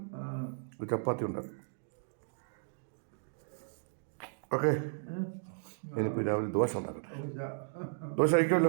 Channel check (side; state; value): left; silent; digital silence